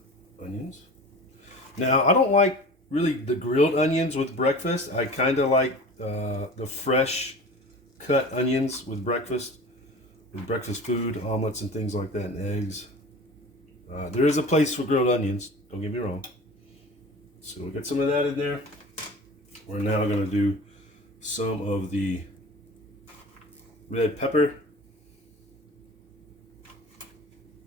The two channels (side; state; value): both; normal; correlation 0.38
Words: onions. Now, I don't like really the grilled onions with breakfast. I kind of like the fresh cut onions with breakfast food, omelets and things like that, and eggs. There is a place for grilled onions, don't get me wrong. So we'll get some of that in there. We're now going to do some of the red pepper.